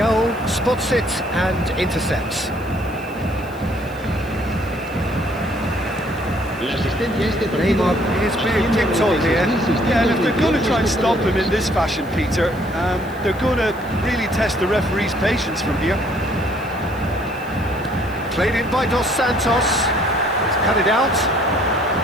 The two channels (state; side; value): noise; left; hiss, 24 dB below the sound